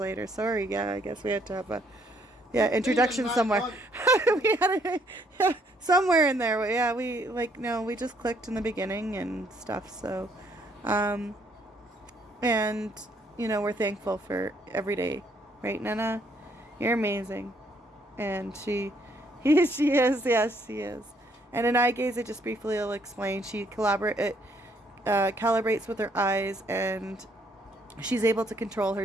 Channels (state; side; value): normal; both; correlation 0.68